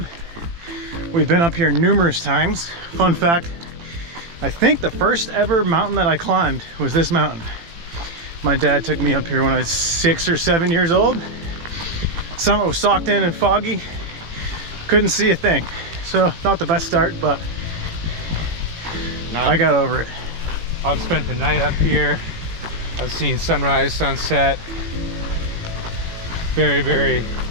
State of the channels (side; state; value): left; late; 18 ms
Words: We've been up here numerous times. Fun fact, I think the first ever mountain that I climbed was this mountain. My dad took me up here when I was 6 or 7 years old. Summit was socked in and foggy. Couldn't see a thing. So not the best start, but I got over it. I've spent the night up here. I've seen sunrise, sunset. Very, very